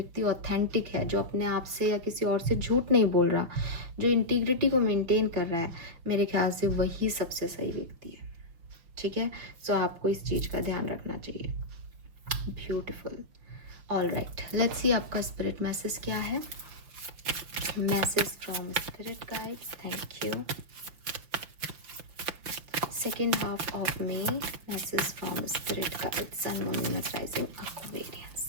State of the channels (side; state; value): left; late; 5.9 ms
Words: ऑथेंटिक है, जो अपने आप से या किसी और से झूठ नहीं बोल रहा, जो इंटीग्रिटी को मेंटेन कर रहा है, मेरे ख्याल से वही सबसे सही व्यक्ति है। ठीक है, सो आपको इस चीज़ का ध्यान रखना चाहिए। Beautiful. All right, let's see आपका स्पिरिट मैसेज क्या है। Message from spirit guides, thank you. Second half of May, message from spirit guides, sun, moon, Venus rising,